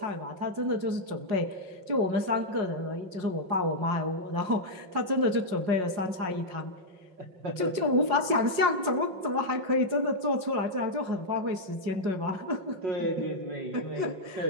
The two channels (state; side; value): late; left; 5.6 ms